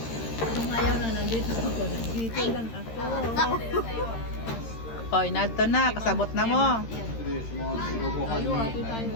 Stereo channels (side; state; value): right; late; 13 ms